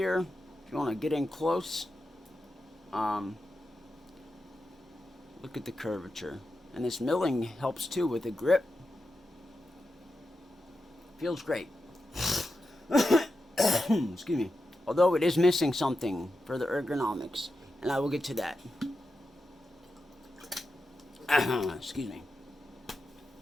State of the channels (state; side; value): normal; both; correlation 0.89